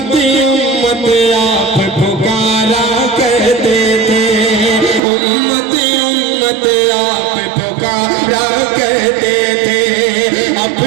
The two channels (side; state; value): left; drops out; at 5.0 s